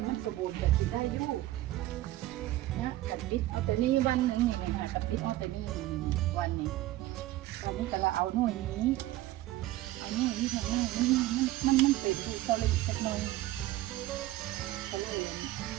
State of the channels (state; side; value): quieter; left; 16.0 dB